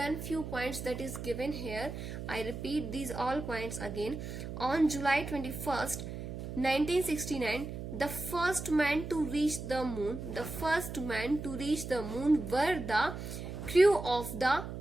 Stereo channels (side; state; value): right; noise; hum, 7 dB below the sound